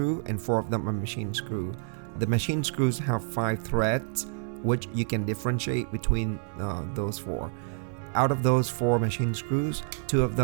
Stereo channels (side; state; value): left; silent; digital silence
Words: and 4 of them are machine screw. The machine screws have 5 threads, which you can differentiate between those 4. Out of those 4 machine screws, 2 of